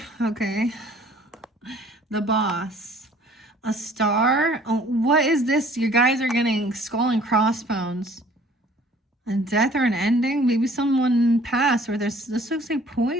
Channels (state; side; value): normal; both; correlation 0.55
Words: Okay. The boss. A star. Oh, what is this? You guys are getting skull and crossbones. A death or an ending? Maybe someone passed, or this looks like